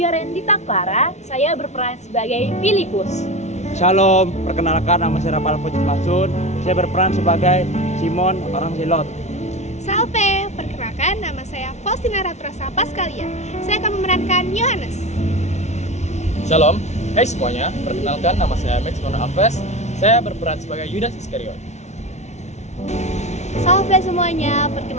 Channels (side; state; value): right; late; 0.32 ms